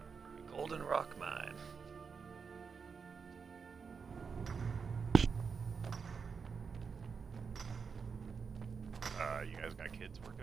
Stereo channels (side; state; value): left; quieter; 5.6 dB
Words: Golden Rock Mine. You guys got kids